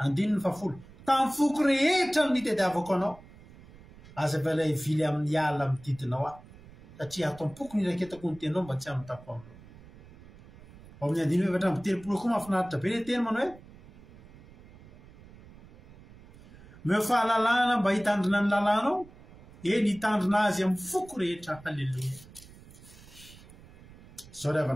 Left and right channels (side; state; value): right; noise; rumble, 21 dB below the sound